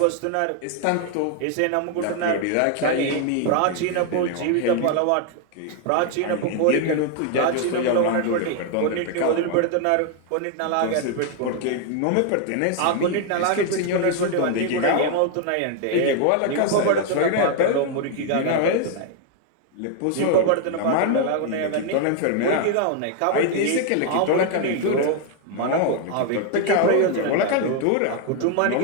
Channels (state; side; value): different; both; correlation 0.01